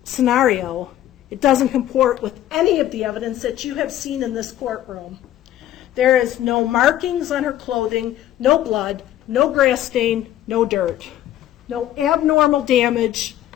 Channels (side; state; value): right; quieter; 12.7 dB